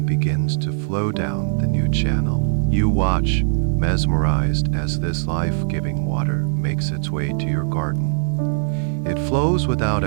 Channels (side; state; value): left; silent; digital silence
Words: begins to flow down the new channel. You watch, mesmerized, as this life-giving water makes its way to your garden. It flows without